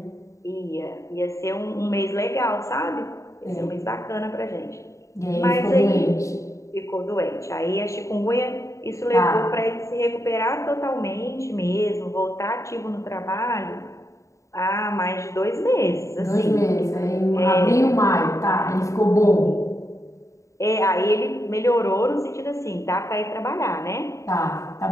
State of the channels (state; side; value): late; right; 0.15 ms